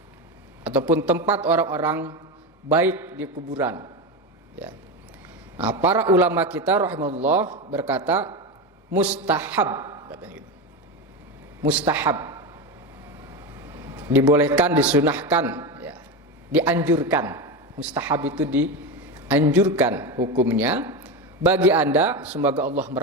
ataupun tempat orang-orang baik di kuburan ya. Nah, para ulama kita rahimahullah berkata mustahab, katanya gitu. Mustahab, dibolehkan, disunahkan ya. Dianjurkan. Mustahab itu dianjurkan hukumnya bagi Anda, semoga Allah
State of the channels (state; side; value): normal; both; correlation 0.18